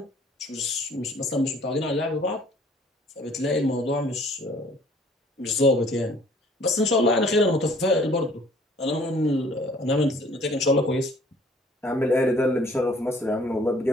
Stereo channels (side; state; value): both; normal; correlation 0.56